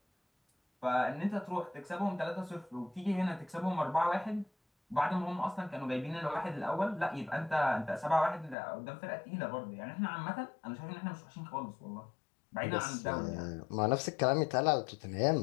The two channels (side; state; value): right; drops out; at 8.6 s